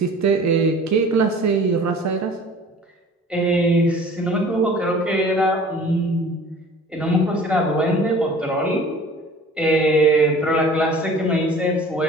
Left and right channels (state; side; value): normal; both; correlation 0.46